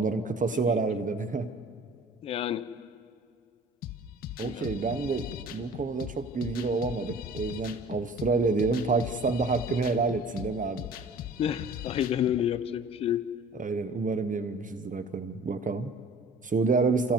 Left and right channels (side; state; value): both; normal; correlation 0.46